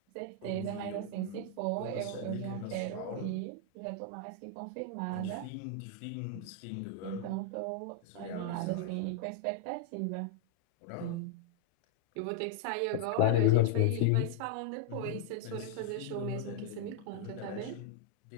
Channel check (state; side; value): different; both; correlation 0.00